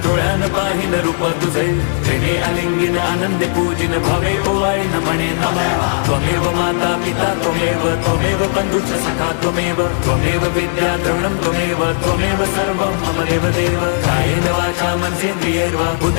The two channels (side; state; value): right; silent; 66 dB below the other